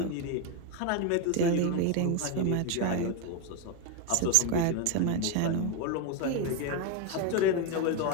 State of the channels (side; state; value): both; different; correlation 0.02